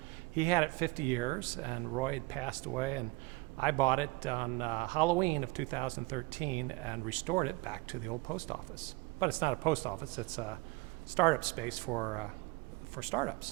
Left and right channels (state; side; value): quieter; left; 22.4 dB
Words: He had it 50 years, and Roy had passed away, and I bought it on Halloween of 2013 and restored it back to the old post office. But it's not a post office, it's a startup space for